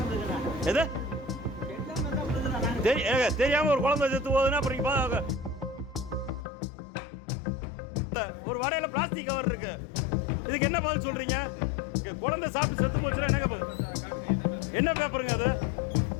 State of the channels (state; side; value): drops out; right; at 6.5 s